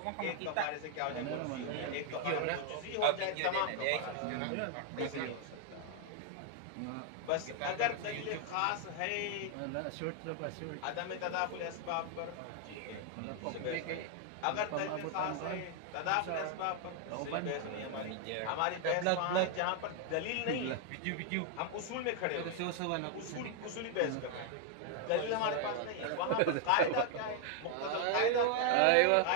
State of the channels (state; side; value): different; both; correlation 0.00